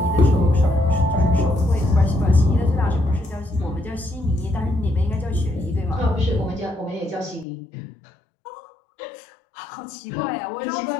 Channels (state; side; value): drops out; right; at 7.5 s